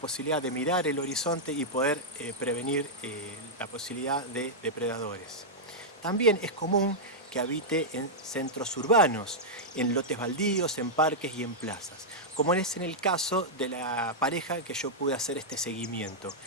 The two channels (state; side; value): normal; both; correlation -0.08